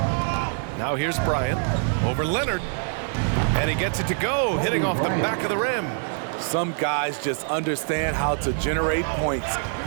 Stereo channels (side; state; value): left; silent; 62 dB below the other